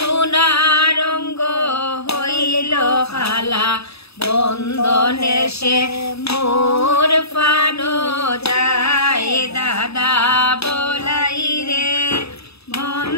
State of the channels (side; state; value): right; late; 0.78 ms